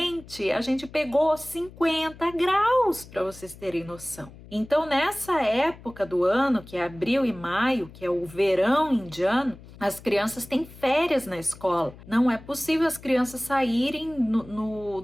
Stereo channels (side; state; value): left; noise; hum, 19 dB below the sound